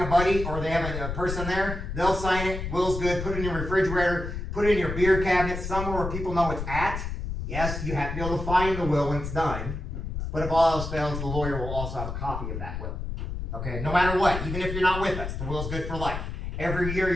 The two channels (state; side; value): noise; left; rumble, 5 dB below the sound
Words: buddy, or they have a person there. They'll sign it, will's good, put it in your refrigerator, put it in your beer cabinet, somewhere where people know it's at. Yes, you have to be able to find the will when it's done. But if all else fails, the lawyer will also have a copy of that will. Okay, no matter what, even if you're not with us, the will's good for life. Every year